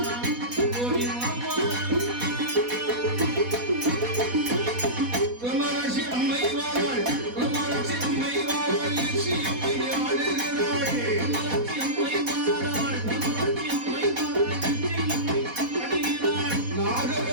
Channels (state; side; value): late; left; 4.1 ms